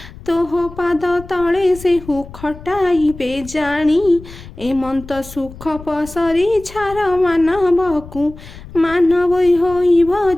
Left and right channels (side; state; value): left; noise; rumble, 16 dB below the sound